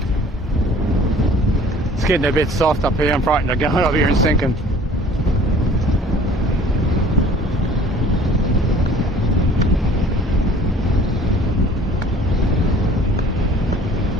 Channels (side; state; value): both; normal; correlation 0.51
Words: It's getting a bit soft up here. I'm frightened of going up here and sinking.